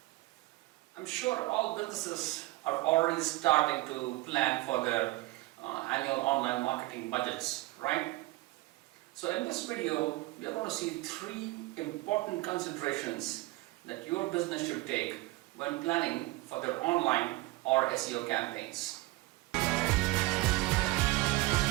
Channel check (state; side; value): quieter; left; 20.4 dB